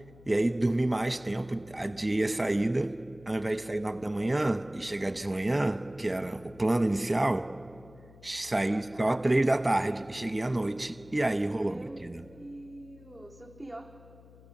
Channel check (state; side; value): noise; left; hum, 23 dB below the sound